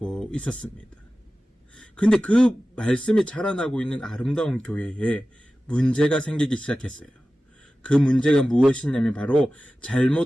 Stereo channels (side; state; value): both; normal; correlation 0.95